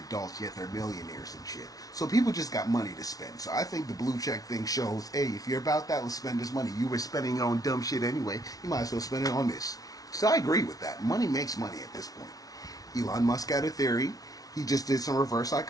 yet, they're millionaires and shit. So people just got money to spend. So I think the blue check thing shows, hey, if you're about that, let's spend this money. You were spending it on dumb shit anyway, you might as well spend it on this. So I agree with that. Money makes money at this point. Elon Musk had a theory. He just did some reverse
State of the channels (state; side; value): late; right; 0.18 ms